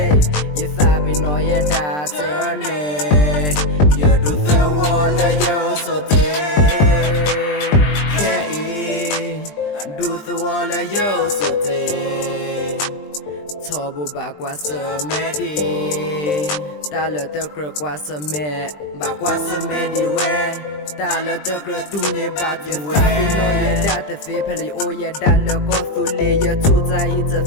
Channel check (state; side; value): late; right; 20 ms